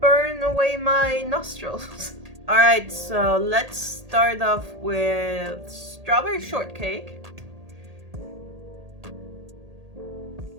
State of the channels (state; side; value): late; left; 1.8 ms